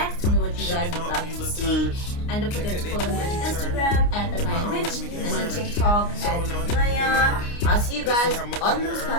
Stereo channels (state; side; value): late; right; 29 ms